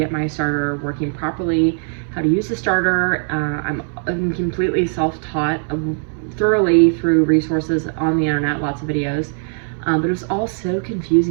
my starter working properly, how to use the starter. I'm completely self-taught thoroughly through resources on the internet, lots of videos, but it was all so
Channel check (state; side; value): silent; left; 66 dB below the other